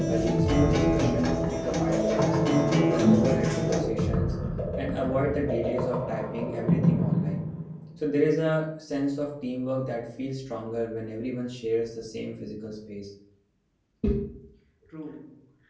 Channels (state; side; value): identical; both; correlation 1.00